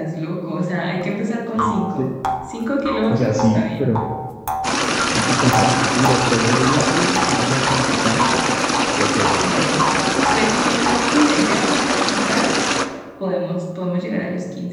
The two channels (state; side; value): identical; both; correlation 1.00